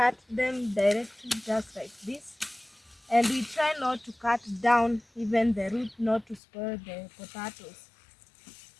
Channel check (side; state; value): right; drops out; at 6.4 s